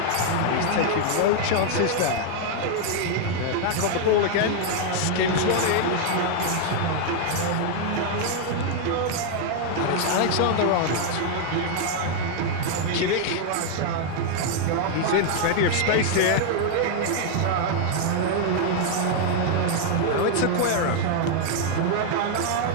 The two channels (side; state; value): both; different; correlation 0.00